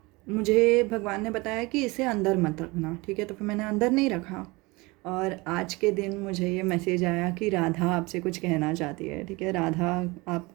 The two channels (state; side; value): quieter; left; 24.2 dB